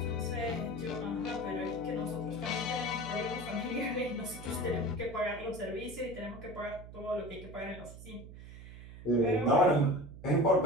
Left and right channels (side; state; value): right; noise; hum, 14 dB below the sound